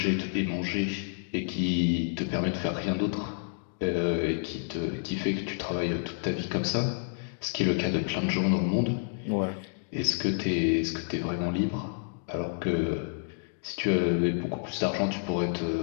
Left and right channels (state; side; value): silent; right; digital silence